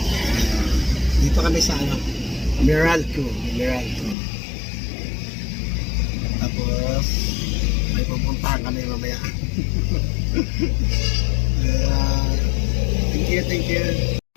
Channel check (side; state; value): right; drops out; at 4.2 s